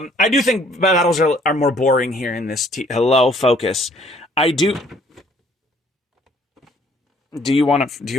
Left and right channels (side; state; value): both; normal; correlation 0.60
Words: do think battles are more boring here in this. Hello, focus. I do. Do you want